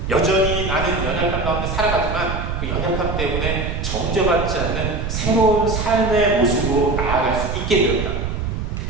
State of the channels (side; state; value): right; noise; rumble, 3 dB below the sound